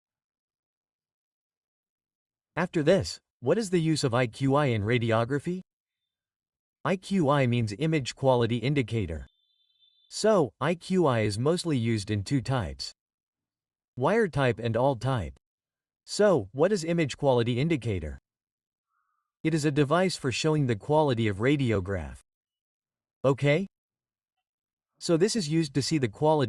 After this, what is the use of IQI in radiography? IQI means image quality indicator. So, IQI is mostly used in two types: wire type and all type. So, what is image quality indicator? It is a device for showing the quality of radiograph. Okay? So this is used to see the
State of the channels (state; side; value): identical; both; correlation 1.00